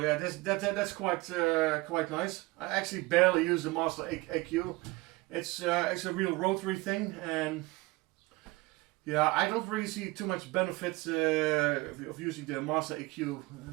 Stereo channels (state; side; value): quieter; left; 22.5 dB